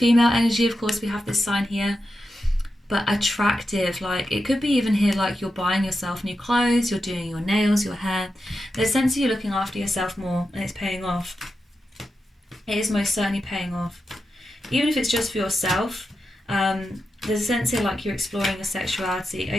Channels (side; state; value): both; normal; correlation 0.89